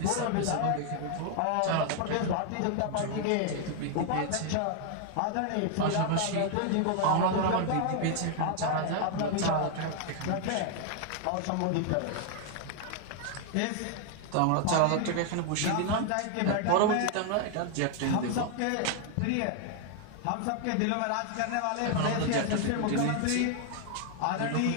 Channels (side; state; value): both; different; correlation 0.00